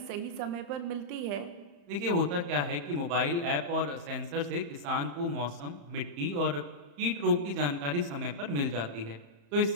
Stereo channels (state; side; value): late; left; 35 ms